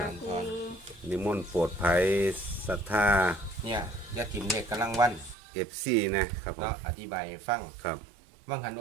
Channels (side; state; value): left; drops out; at 5.4 s